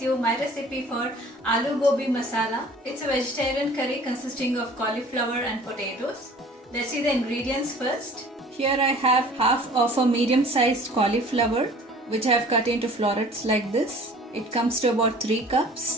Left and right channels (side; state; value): both; normal; correlation 0.48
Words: you my recipe for Aloo Gobi Masala. It's a vegetarian curry consisting of cauliflower and potatoes. Let's see the ingredients first. Here I have half of a medium-sized cauliflower which I have cut into florets like this. It comes to about 3